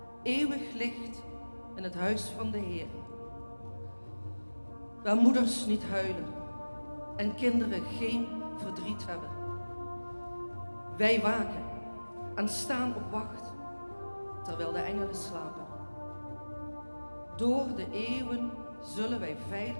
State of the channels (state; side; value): inverted; both; correlation -1.00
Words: eeuwig licht in het huis van de Heer. Waar moeders niet huilen en kinderen geen verdriet hebben. Wij waken en staan op wacht, terwijl de engelen slapen. Door de eeuwen zullen wij